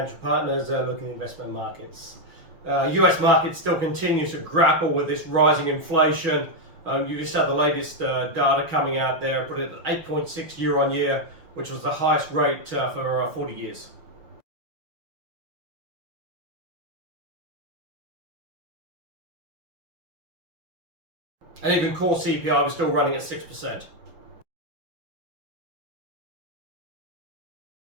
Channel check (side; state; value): left; late; 6.2 ms